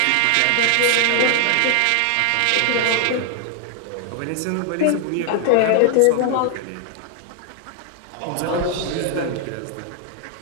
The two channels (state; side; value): different; both; correlation 0.00